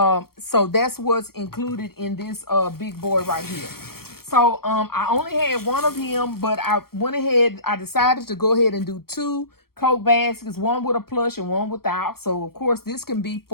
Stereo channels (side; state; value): right; late; 0.94 ms